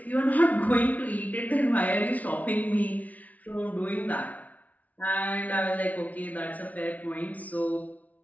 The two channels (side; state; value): right; late; 0.072 ms